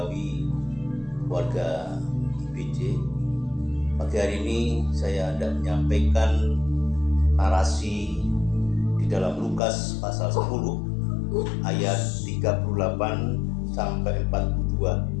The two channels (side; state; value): right; drops out; at 9.6 s